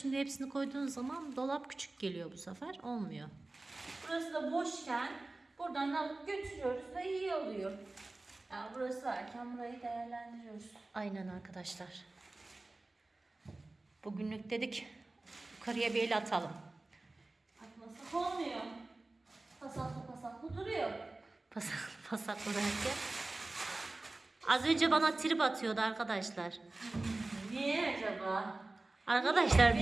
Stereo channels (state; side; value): quieter; left; 3.0 dB